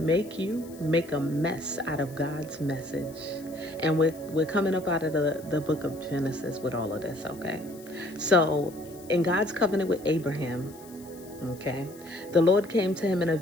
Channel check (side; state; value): left; noise; hiss, 22 dB below the sound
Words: you make a mess out of God's message. And we're coming up out of the book of Genesis with all of this, okay? So, in God's covenant with Abraham, okay, the Lord came to him in a